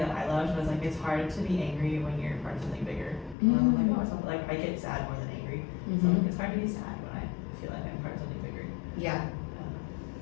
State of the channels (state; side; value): drops out; right; at 3.4 s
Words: I loved was like, it's hard to be angry when you're part of something bigger. I'm like, oh, it's not, like I get sad more than angry. So like, it's hard to be sad when I feel like I'm part of something bigger. Yeah.